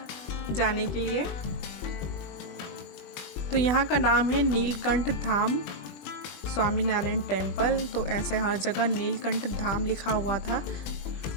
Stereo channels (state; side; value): late; right; 21 ms